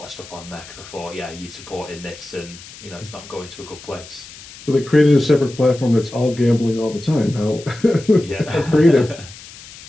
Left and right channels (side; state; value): left; noise; hiss, 18 dB below the sound